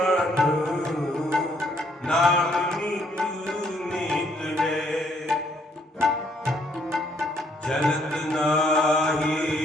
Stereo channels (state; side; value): normal; both; correlation 0.68